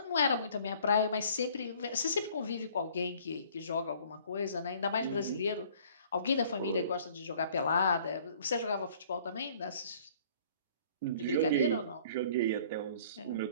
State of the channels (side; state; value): both; inverted; correlation -0.55